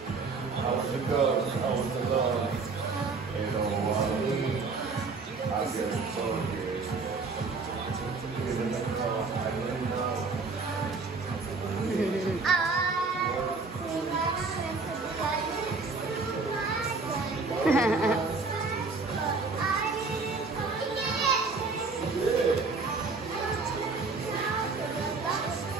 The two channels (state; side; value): quieter; left; 4.2 dB